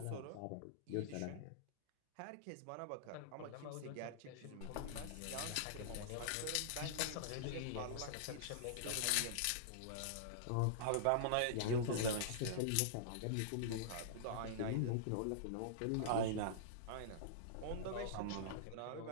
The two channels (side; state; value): both; different; correlation -0.02